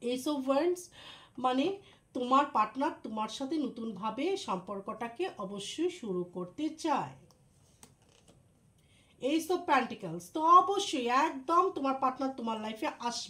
ওয়ান্ডস মানে তোমার পার্টনার তোমার সাথে নতুনভাবে সম্পর্কটাকে অবশ্যই শুরু করতে চায়। এইস অফ পেন্টিকলস, তো অবশ্যই একদম তোমার পার্টনার তোমার লাইফে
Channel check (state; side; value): identical; both; correlation 1.00